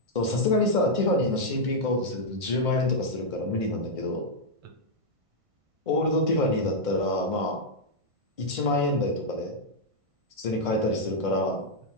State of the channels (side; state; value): left; late; 1.5 ms